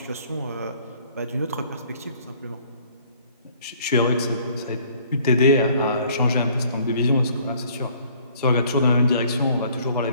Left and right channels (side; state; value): both; inverted; correlation -0.58